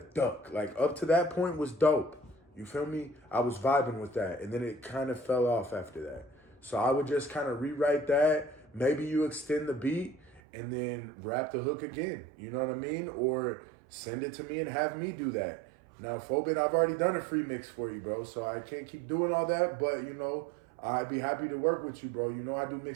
duck. Like, up to that point was dope. You feel me? I was vibing with that. And then it kind of fell off after that. So I would just kind of rewrite that. Maybe you extend the beat and then rap the hook again. You know what I mean? Or send it to me and have me do that. Now, Phobin, I've already done a free mix for you, bro. So I can't keep doing all that. But, you know, I'd be happy to work with you, bro. You know I do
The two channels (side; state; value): left; drops out; at 10.4 s